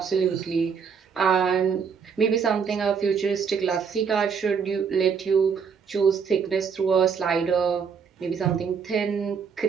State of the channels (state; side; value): quieter; left; 6.3 dB